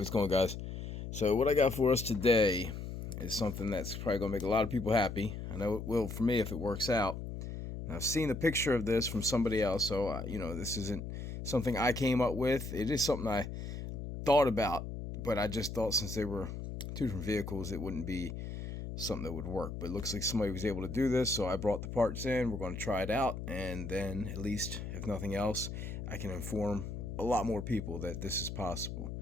going on, guys? So what I got for us today is something that's probably going to make a lot of people happy. I know it will for me if it works out. Now, I've seen a picture of this from somebody else, so this isn't something I came up with. It is something I thought about, but I just thought since they were two different vehicles, it wouldn't be something that would work. But it looks like somebody was able to do this, so I brought the parts in. We're going to try it out, and then at least, if nothing else, I can inform a lot more people that this is possible.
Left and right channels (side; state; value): left; noise; hum, 7 dB below the sound